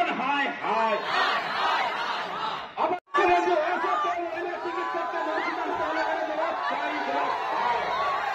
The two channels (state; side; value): identical; both; correlation 1.00